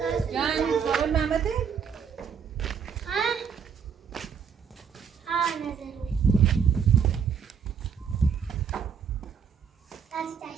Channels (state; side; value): quieter; left; 7.0 dB